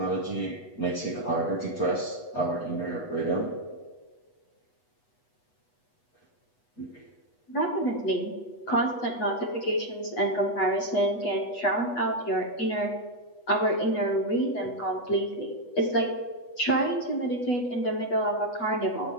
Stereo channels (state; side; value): late; right; 8.1 ms